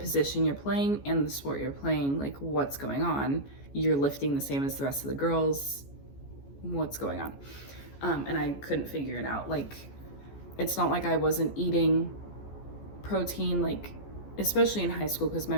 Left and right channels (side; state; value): right; late; 14 ms